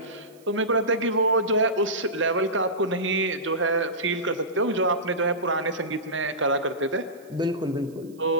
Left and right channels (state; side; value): noise; right; hiss, 29 dB below the sound